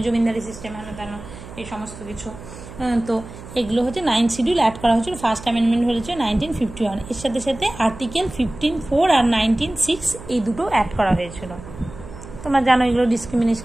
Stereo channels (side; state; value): right; noise; hum, 15 dB below the sound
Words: জমিদারি সিস্টেম হেন এই সমস্ত কিছু। তো এগুলো হচ্ছে 9th শিডিউল অ্যাড করা হয়েছিল। ফার্স্ট অ্যামেন্ডমেন্ট হয়েছে 1951। এর সাথে সাথে আর্টিকেল 15(4) আর 19(6) এই দুটো অ্যাড করা হয়েছিল। তোমরা জানো এগুলো